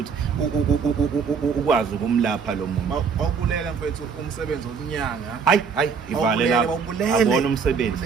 ukwazi ukumlapha lo muntu awubulela mfethu umsebenzi wonyanga hayi ivale lapho abona umsebenzi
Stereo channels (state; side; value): quieter; left; 5.9 dB